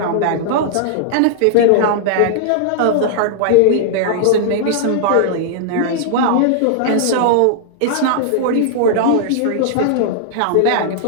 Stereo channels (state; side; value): different; both; correlation -0.01